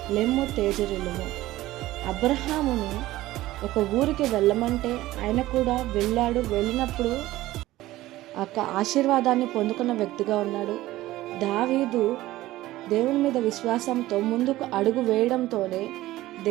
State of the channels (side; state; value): left; quieter; 16.5 dB